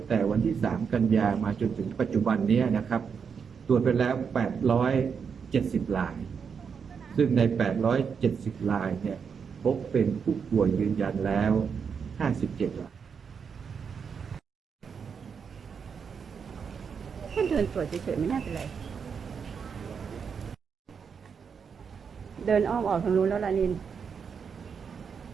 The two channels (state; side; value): quieter; left; 6.4 dB